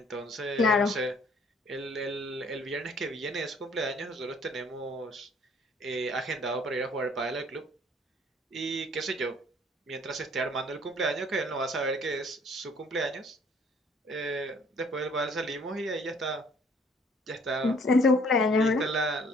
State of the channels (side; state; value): both; normal; correlation 0.59